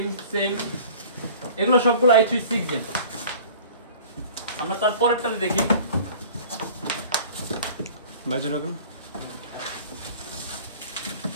সেম এগুলো সবগুলো i3 6th Gen। আমরা তারপরেরটাতে দেখি। বাজে রকম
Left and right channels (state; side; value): inverted; both; correlation -0.45